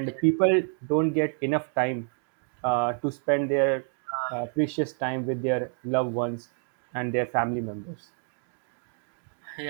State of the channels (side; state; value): left; silent; 55 dB below the other